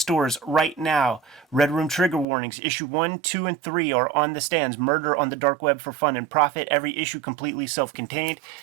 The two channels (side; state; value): left; drops out; at 2.2 s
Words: right now. Red Room Trigger Warnings, issue 1, 2, and 3 are on the stands. Murder on the Dark Web for fun and profit. Every issue completely self-contained.